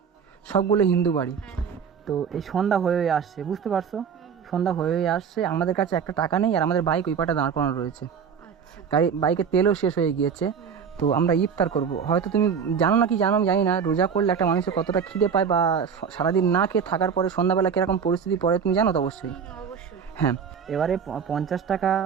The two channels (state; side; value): quieter; left; 6.8 dB